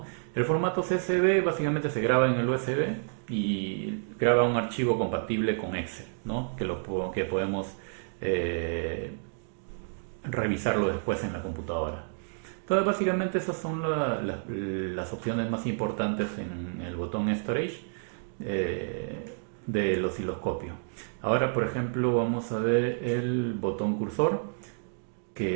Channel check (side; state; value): left; silent; digital silence